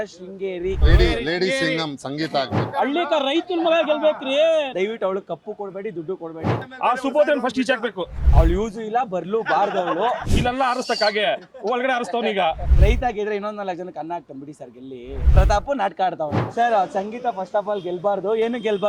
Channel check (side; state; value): both; identical; correlation 1.00